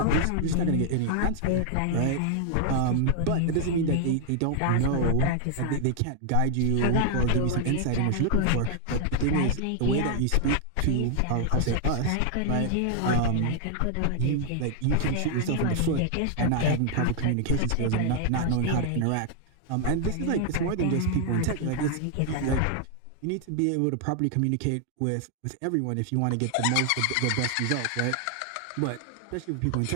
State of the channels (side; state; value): both; different; correlation 0.00